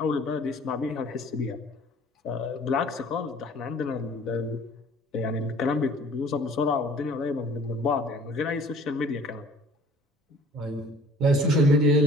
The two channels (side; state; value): both; normal; correlation 0.51